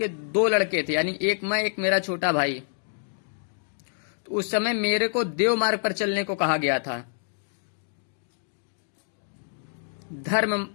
2 लड़के थे, यानी एक मैं एक मेरा छोटा भाई। तो उस समय मेरे को देव मार्ग पर चलने को कहा गया था,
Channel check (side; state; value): right; silent; digital silence